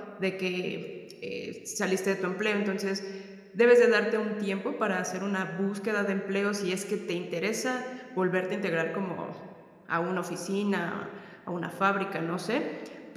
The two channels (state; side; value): identical; both; correlation 1.00